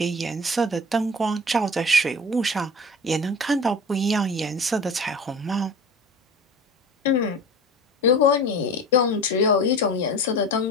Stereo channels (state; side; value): normal; both; correlation 0.35